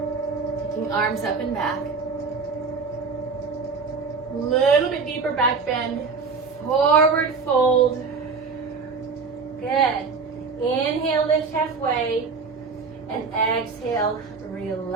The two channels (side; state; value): left; quieter; 4.9 dB